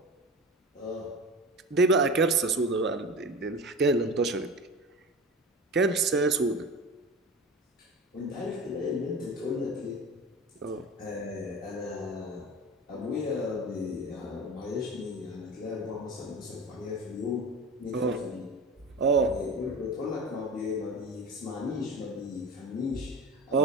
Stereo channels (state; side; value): normal; both; correlation 0.31